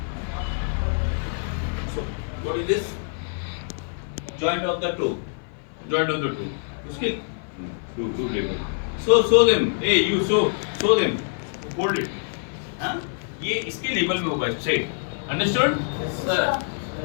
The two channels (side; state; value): right; silent; 55 dB below the other